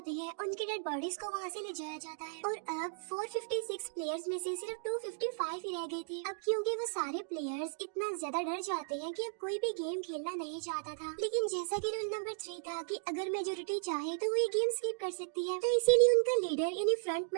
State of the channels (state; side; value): silent; left; digital silence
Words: हैं उनकी डेड बॉडीज को वहाँ से ले जाया जाता है और अब 456 प्लेयर्स में से सिर्फ 255 ही रह गए थे। अब क्योंकि वो सारे प्लेयर्स इतना ज्यादा डर जाते हैं कि अब कोई भी गेम खेलना नहीं चाहता था। लेकिन जैसा कि रूल नंबर 3 था कि अगर मेजोरिटी चाहे तो वो ये गेम स्किप कर सकती है, तो इसीलिए उनका लीडर यानी